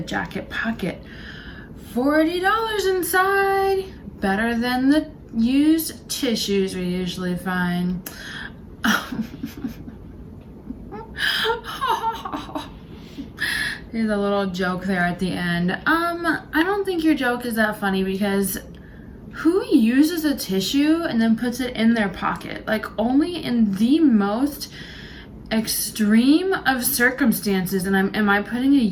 jacket pocket. $40 inside. Better than the used tissues we usually find. There's a little joke there at the end. I don't think your joke is that funny because who uses a tissue and then puts it in their pocket? Like, only in the most extreme of circumstances. And am I putting a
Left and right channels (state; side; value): identical; both; correlation 1.00